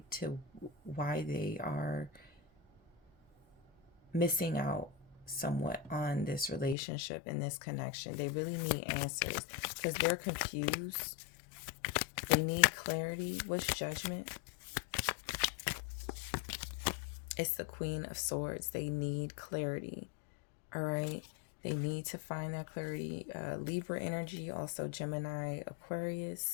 to why they are missing out somewhat on this relationship and this connection. They really need answers because they're confused. They need clarity. What's Judgment? It's the Queen of Swords. They need clarity. All right. They need to find that clarity. Libra energy, also Gemini,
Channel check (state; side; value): drops out; right; at 6.8 s